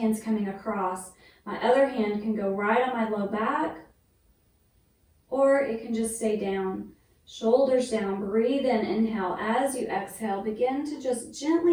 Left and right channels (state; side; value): identical; both; correlation 1.00